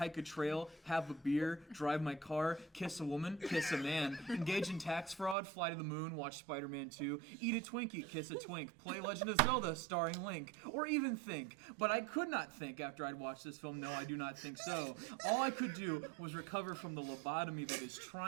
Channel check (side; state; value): left; drops out; at 5.4 s